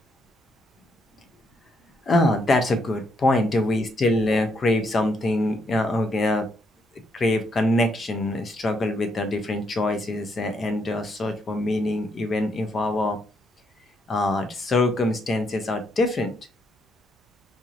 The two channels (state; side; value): normal; both; correlation 0.75